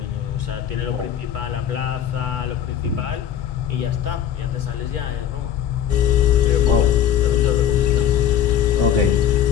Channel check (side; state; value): right; quieter; 9.6 dB